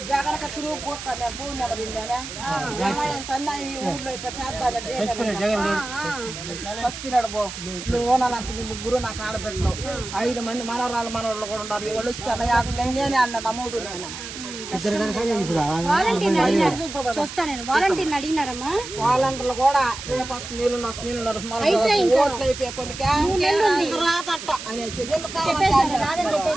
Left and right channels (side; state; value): right; noise; hiss, 10 dB below the sound